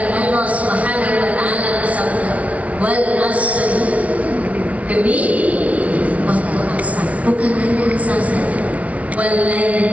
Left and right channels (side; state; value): left; late; 0.066 ms